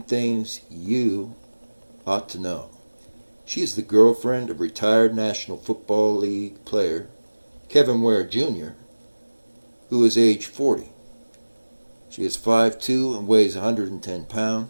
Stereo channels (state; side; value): inverted; both; correlation -1.00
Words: things you ought to know. She is the girlfriend of retired National Football League player Kevin Ware Jr., who is age 40. She is 5'2" and weighs 110